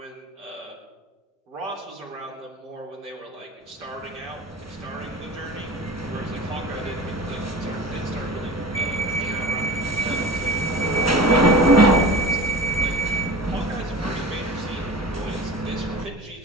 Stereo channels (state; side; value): normal; both; correlation 0.35